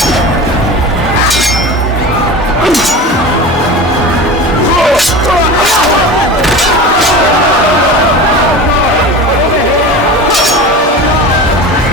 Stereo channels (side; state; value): both; normal; correlation 0.31